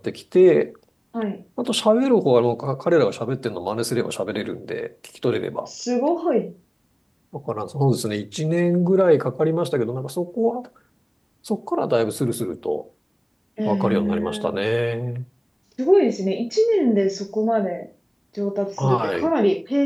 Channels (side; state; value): both; identical; correlation 1.00